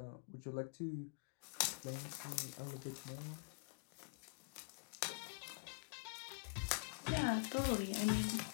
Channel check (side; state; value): right; quieter; 39.6 dB